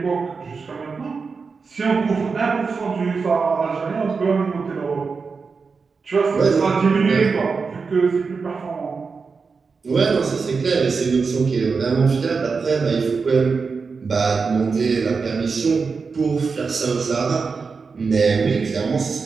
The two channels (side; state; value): left; quieter; 4.9 dB